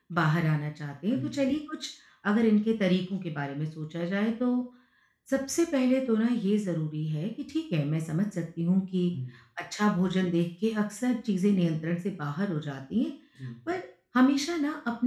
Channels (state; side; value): identical; both; correlation 1.00